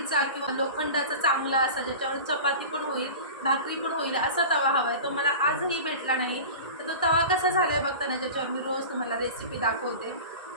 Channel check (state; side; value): inverted; both; correlation -0.34